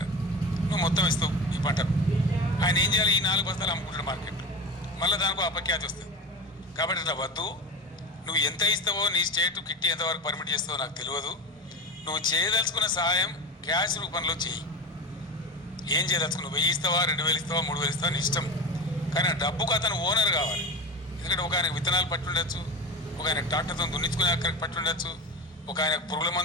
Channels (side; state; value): both; normal; correlation 0.27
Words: నువ్వు మొత్తం ఇస్తావు ఈ పంటను. ఆయన ఏం చేయాలి, ఈ 4 బస్తాలు అమ్ముకుంటాడు మార్కెట్లో, మళ్ళీ దానికి అపఖ్యాతి వస్తుంది. కాబట్టి ఇట్లా వద్దు, నువ్వు ఎంత ఇస్తావో నీ స్టేట్ కిట్టి ఎంతవరకు పర్మిట్ చేస్తావో నాకు తెలియదు. నువ్వు చేయదలుచుకున్న సహాయం క్యాష్ రూపంలో చెయ్యి. ఏం చేయదలుచుకున్నావు, 1000 ఇస్తావా, 2000 ఇస్తావా, 3000 ఇస్తావా నీ ఇష్టం. కానీ ఆ డబ్బుకు అతను ఓనర్ కావాలి. ఎందుకంటే ఒక ఆయనకు విత్తనాలు పట్టి ఉండొచ్చు, ఒక ఆయనకు ట్రాక్టర్తో దున్నించుకునే అక్కడికి పట్టి ఉండొచ్చు, ఒక ఆయనకు పురుగుల